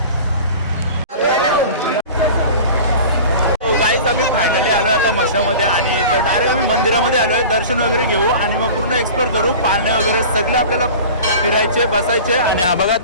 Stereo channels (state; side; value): inverted; both; correlation -0.38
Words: गाईज आम्ही फायनली आलो आता मशामध्ये आणि तर डायरेक्ट आम्ही मंदिरामध्ये आलो आहे। दर्शन वगैरे घेऊ आणि मग पूर्ण एक्सप्लोर करू। पाळणे वगैरे सगळे आपल्याला फिरायचे बसायचे आणि हा बघा